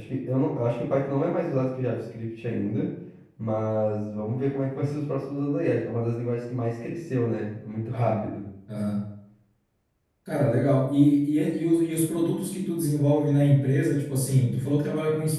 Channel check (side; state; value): both; identical; correlation 1.00